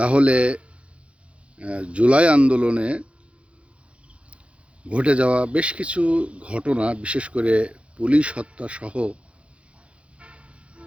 জুলাই আন্দোলনে ঘটে যাওয়া বেশ কিছু ঘটনা, বিশেষ করে পুলিশ হত্যা সহ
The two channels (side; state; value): left; late; 0.061 ms